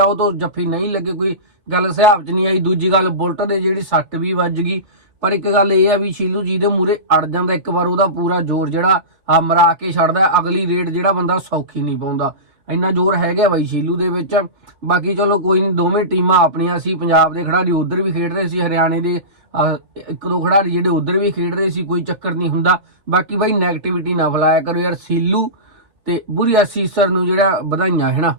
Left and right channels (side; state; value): left; late; 4.0 ms